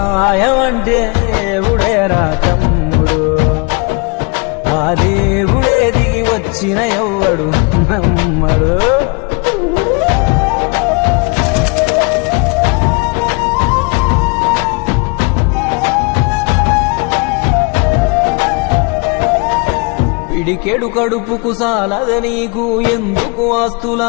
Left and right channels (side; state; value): right; quieter; 30.7 dB